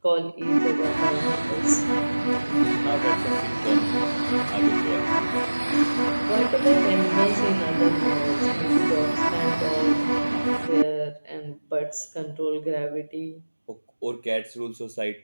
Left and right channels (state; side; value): inverted; both; correlation -1.00